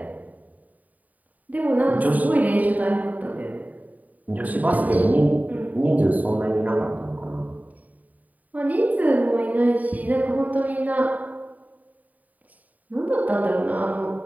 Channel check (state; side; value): late; left; 0.075 ms